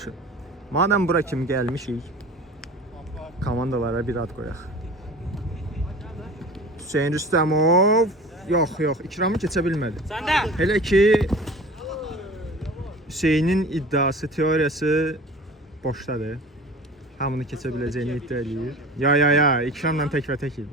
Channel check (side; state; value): both; normal; correlation 0.40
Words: Madəm bura kimi gəlmişik, komandalara bir ad qoyaq. Hüseyin Rüstəmov. Yox, İkramı keçə bilmədi. Elə ki Hüseynin iddiası, teoriyası boşdadır. Hamını keçə biləcəyini iddia edir. Ya, İkramla təkbətək idi.